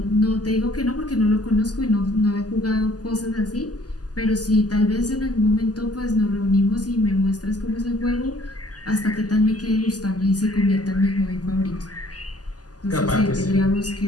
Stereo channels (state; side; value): late; right; 0.68 ms